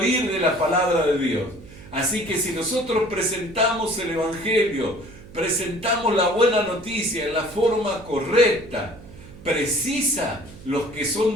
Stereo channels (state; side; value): noise; right; hum, 19 dB below the sound